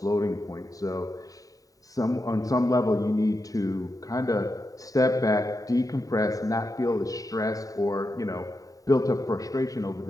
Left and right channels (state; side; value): late; right; 0.17 ms